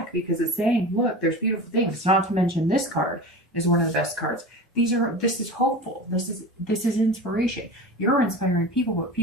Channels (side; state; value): both; normal; correlation 0.31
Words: because it's saying, look, there's beautiful things. Not to mention this card is one of the best cards. This is hopeful. This is inspiration. You're inspiring people, but